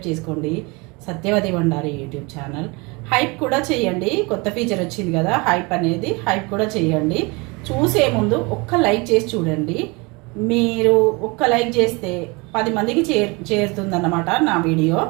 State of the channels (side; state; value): left; quieter; 27.3 dB